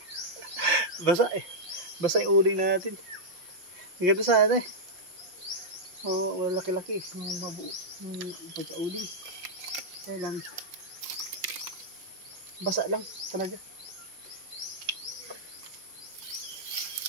Basa eh. Basa yung uling natin. Ang ganda sana eh. Oo, laki-laki. Yung mabuo. Yung pagka-uling. Kaya lang. Basa lang talaga.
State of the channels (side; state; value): left; late; 5.7 ms